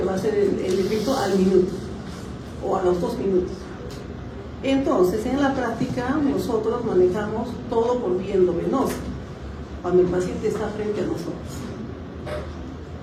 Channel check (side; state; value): both; identical; correlation 1.00